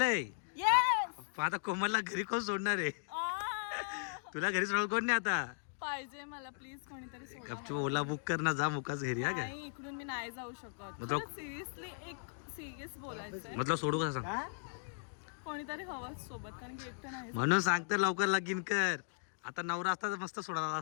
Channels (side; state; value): right; silent; digital silence